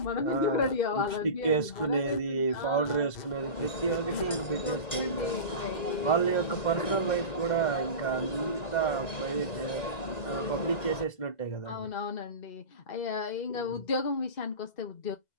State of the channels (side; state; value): right; late; 2.0 ms